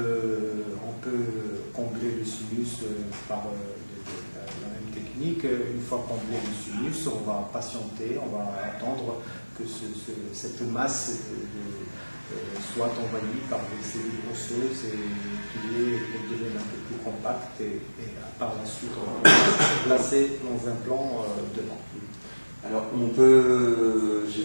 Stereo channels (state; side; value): inverted; both; correlation -1.00